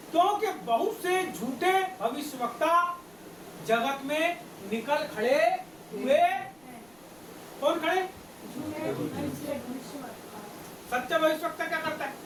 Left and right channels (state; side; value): noise; right; rumble, 28 dB below the sound